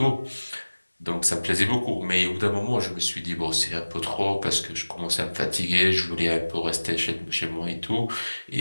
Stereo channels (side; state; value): both; inverted; correlation -1.00